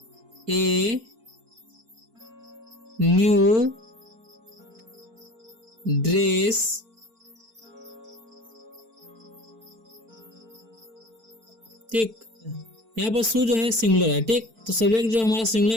ए न्यू ड्रेस ठीक। यहाँ पर शू जो है सिंगुलर है। ठीक। तो सब्जेक्ट जो हमारा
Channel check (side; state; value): left; late; 4.5 ms